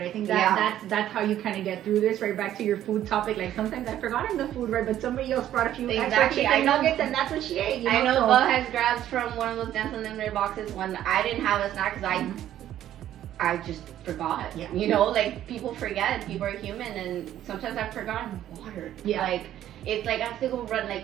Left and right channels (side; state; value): left; quieter; 12.0 dB